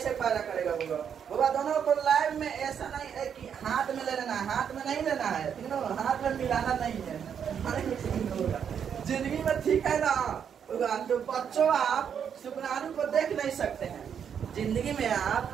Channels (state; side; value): quieter; left; 7.9 dB